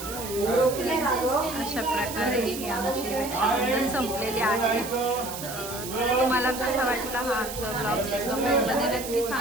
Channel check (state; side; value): noise; right; hiss, 9 dB below the sound